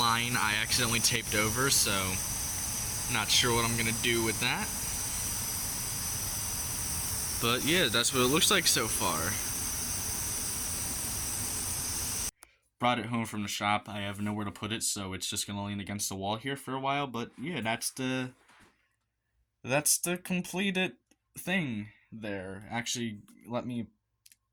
I accidentally taped over, so not sure what I'm gonna do with that. But yeah, that's what it looks like so far. Brought it home from the shop. I have nowhere to put it, so it's just gonna lean against the wall here for a while. But yeah, that's the completed thing there. Actually, let me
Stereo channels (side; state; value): both; identical; correlation 1.00